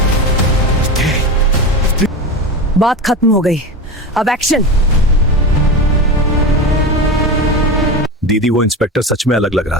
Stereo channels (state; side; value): normal; both; correlation 0.24